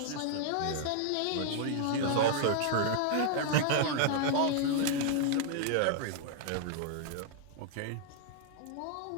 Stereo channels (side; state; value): both; different; correlation -0.01